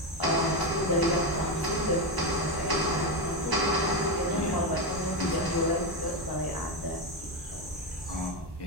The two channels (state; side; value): normal; both; correlation 0.11